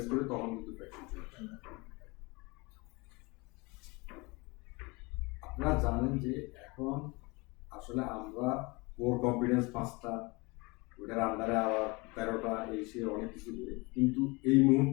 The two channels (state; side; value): quieter; right; 26.2 dB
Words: করে তখন কিন্তু ফ্র্যাকশন চলে আসে। আপনারা জানেন যে এখন আসলে আমরা কোর কম্পিটেন্স 5টা, ওটার আন্ডারে আবার 13টা, এই সে অনেক কিছু করে, কিন্তু এই